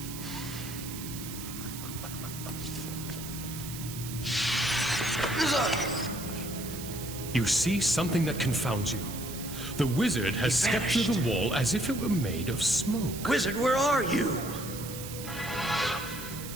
You see something that confounds you. The wizard has stepped through the wall as if it were made of smoke. Wizard, where are you?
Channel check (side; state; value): right; noise; hiss, 10 dB below the sound